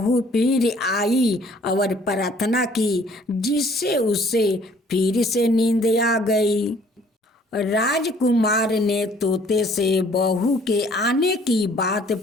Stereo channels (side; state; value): both; normal; correlation 0.58